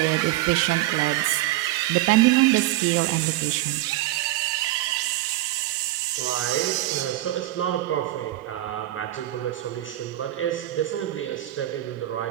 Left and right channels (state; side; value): quieter; left; 15.6 dB